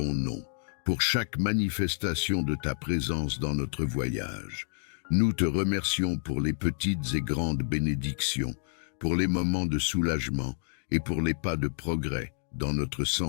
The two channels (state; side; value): silent; right; digital silence